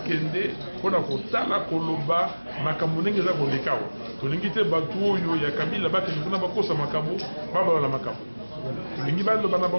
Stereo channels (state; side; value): inverted; both; correlation -1.00